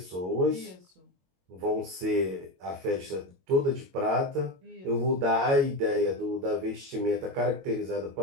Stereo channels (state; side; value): late; left; 22 ms